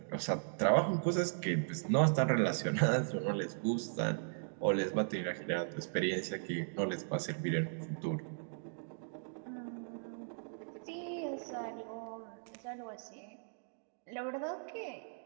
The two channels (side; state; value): left; silent; digital silence